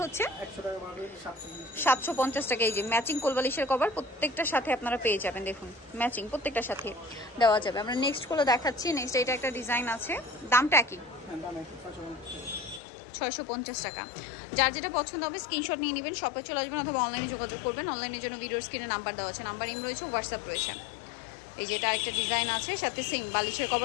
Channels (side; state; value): right; drops out; at 12.8 s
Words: হচ্ছে 750 টাকা। এই যে ম্যাচিং কোল বালিশের কভার প্রত্যেকটার সাথে আপনারা পেয়ে যাবেন। দেখুন ম্যাচিং প্রত্যেকটার সাথে দেওয়া যাবে। আমরা নেক্সট গুলো দেখাচ্ছি। নেক্সট এটা একটা ডিজাইন আছে, দামটা কি? 650 টাকা। যার যেটা পছন্দ হবে স্ক্রিনশট নিয়ে নেবেন, শপে চলে আসবেন অথবা অনলাইনে যোগাযোগ করবেন। অনলাইনের জন্য ভিডিওর স্ক্রিনে নাম্বার দেওয়া আছে, নাম্বার ইম রয়েছে, হোয়াটসঅ্যাপ রয়েছে। এই যে এটা একটা ডিজাইন আছে, সাথে সেম বালিশের